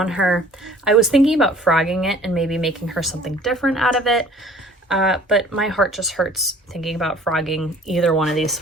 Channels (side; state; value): both; normal; correlation 0.51